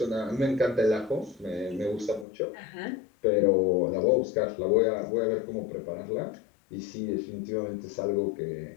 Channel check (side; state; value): right; drops out; at 2.2 s